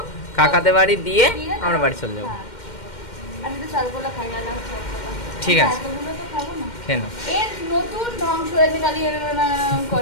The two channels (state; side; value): late; right; 2.1 ms